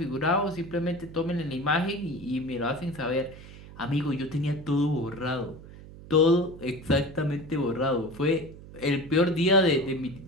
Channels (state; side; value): noise; right; hum, 17 dB below the sound